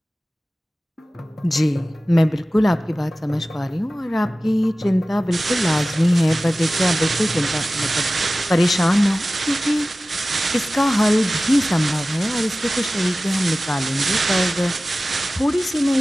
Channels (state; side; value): normal; both; correlation 0.96